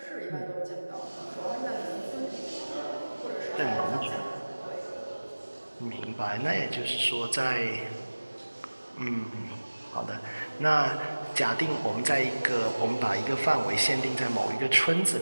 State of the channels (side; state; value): both; inverted; correlation -1.00